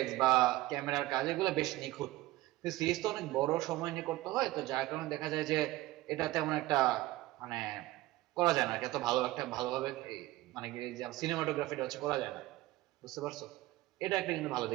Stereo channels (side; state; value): left; quieter; 17.9 dB